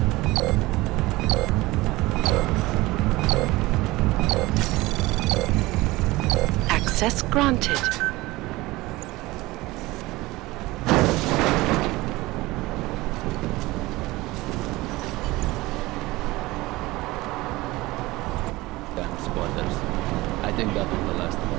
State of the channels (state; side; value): quieter; left; 20.0 dB